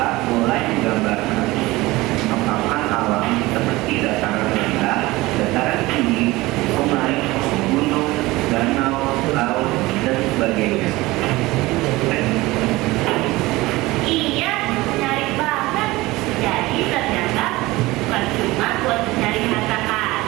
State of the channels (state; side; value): quieter; left; 20.0 dB